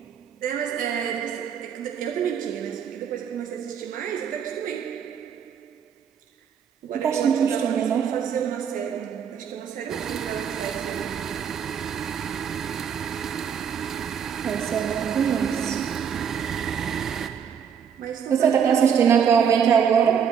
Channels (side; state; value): left; quieter; 7.6 dB